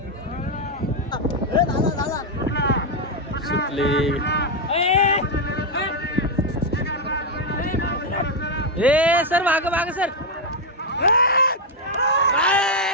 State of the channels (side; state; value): both; normal; correlation 0.02